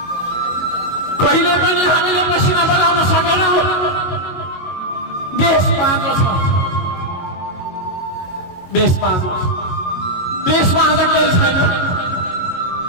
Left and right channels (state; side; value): late; right; 22 ms